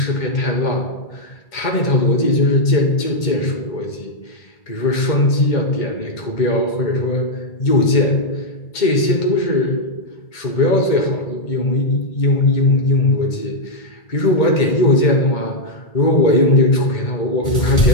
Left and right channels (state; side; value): late; right; 2.1 ms